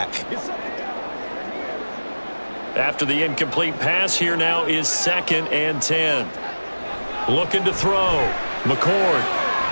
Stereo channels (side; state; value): both; inverted; correlation -1.00